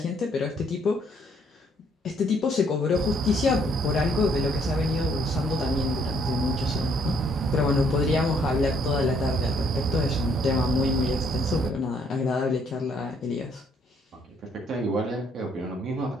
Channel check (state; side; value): normal; both; correlation 0.67